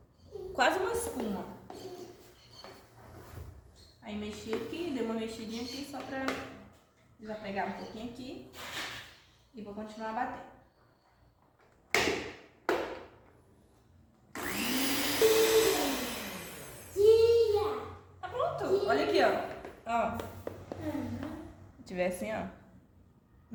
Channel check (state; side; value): identical; both; correlation 1.00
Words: quase uma espuma. Aí mexi aqui, dei uma mexidinha aqui só pra desapegar um pouquinho aqui. E vou continuar a bater. Tá pronto. Olha aqui, ó. Ó. Se tiver assim, ó.